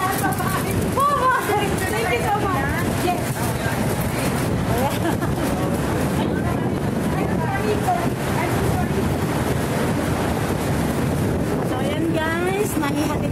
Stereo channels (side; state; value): both; identical; correlation 1.00